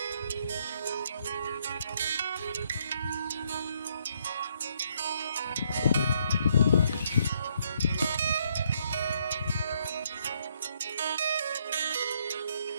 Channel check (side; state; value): both; inverted; correlation -0.71